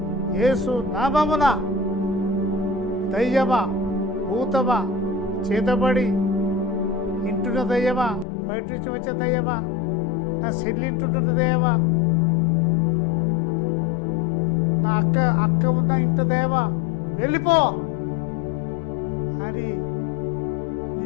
యేసు నామమున దయ్యమా, భూతమా, చేతబడి ఇంటున్న దయ్యమా, బయట నుంచి వచ్చే దయ్యమా, నా సెల్లింటుంటున్న దయ్యమా, నా అక్క ఉన్న ఇంట దయ్యమా, వెళ్ళిపో అని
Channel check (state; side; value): drops out; right; at 8.2 s